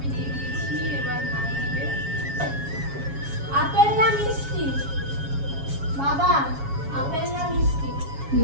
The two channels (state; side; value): late; left; 7.2 ms